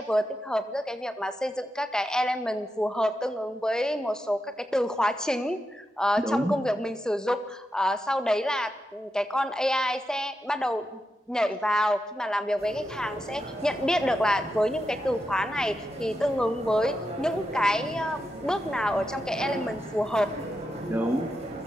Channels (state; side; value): normal; both; correlation 0.87